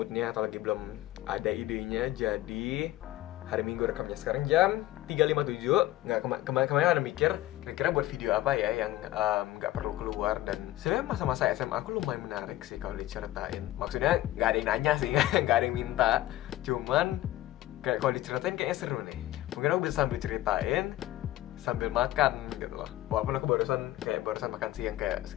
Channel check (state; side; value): quieter; right; 15.5 dB